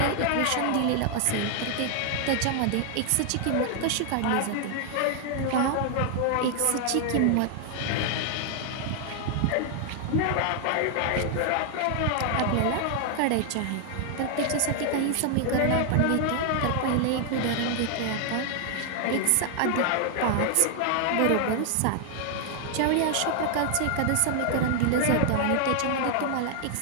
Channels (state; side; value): different; both; correlation 0.00